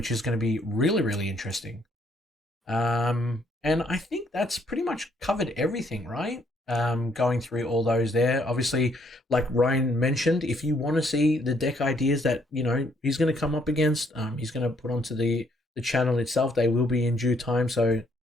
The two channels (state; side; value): normal; both; correlation 0.69